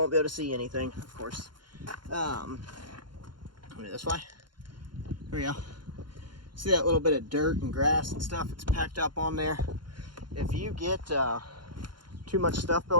be able to see anything, of course. Let me this way. There we go. See that little bit of dirt and grass and stuff that's packed up on there? If you get too much stuff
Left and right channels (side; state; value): left; late; 0.71 ms